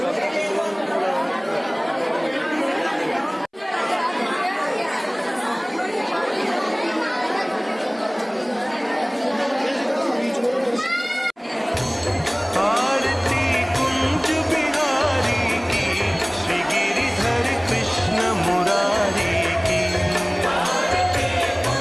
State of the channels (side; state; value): both; identical; correlation 1.00